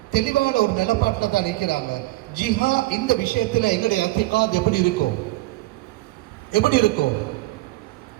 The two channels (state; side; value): quieter; left; 18.7 dB